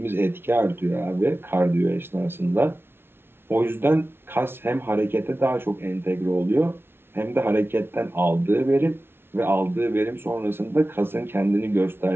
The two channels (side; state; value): left; late; 0.11 ms